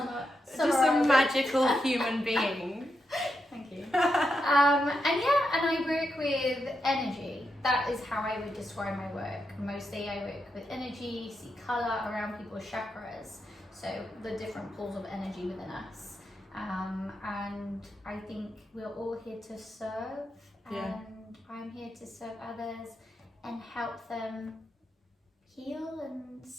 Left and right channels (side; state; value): both; normal; correlation 0.85